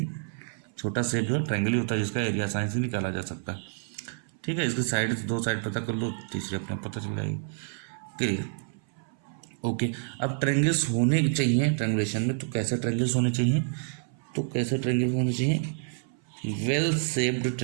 छोटा शेप जो ट्रायंगल ही होता है, जिसका एरिया आसानी से निकाला जा सकता है। ठीक है, इसकी साइड, दो साइड पता कर लो, तीसरी अपने पता चल जाएगी। Clear, okay. अब ट्रायंगल्स होने चाहिए ट्रायंगुलेशन में, तो कैसे ट्रायंगल्स होने चाहिए, तो कैसे ट्रायंगल होने चाहिए, वेल शेप्ड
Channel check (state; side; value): silent; left; 58 dB below the other